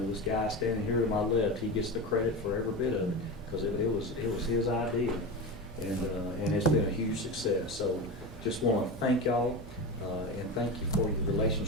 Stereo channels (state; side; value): normal; both; correlation 0.23